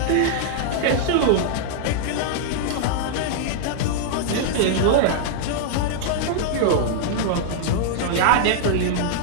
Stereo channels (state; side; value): different; both; correlation -0.01